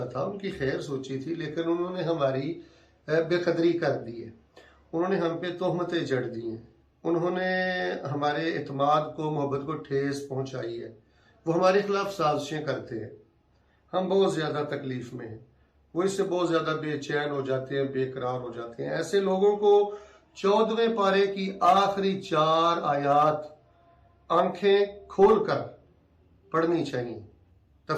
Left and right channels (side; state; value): both; identical; correlation 1.00